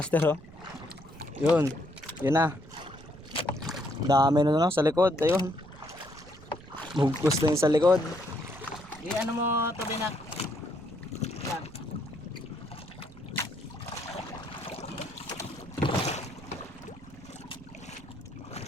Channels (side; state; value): right; noise; rumble, 19 dB below the sound